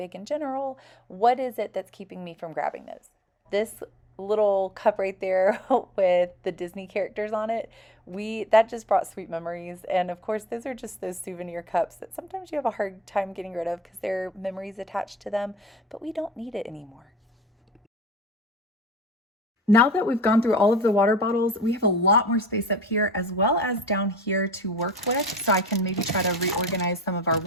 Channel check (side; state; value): both; normal; correlation 0.48